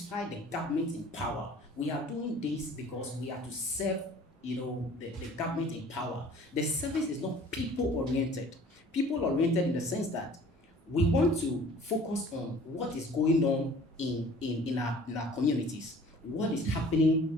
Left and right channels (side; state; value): both; normal; correlation 0.50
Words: the government in power. We are doing this because we are to serve, the government in power. The service is not people-oriented. People-oriented in the sense that we want to focus on what is going on in our communities, what is